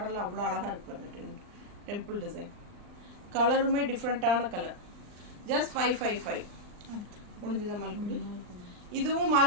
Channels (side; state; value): left; late; 39 ms